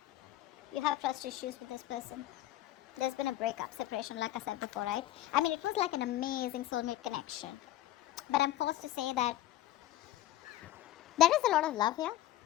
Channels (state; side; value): quieter; right; 14.4 dB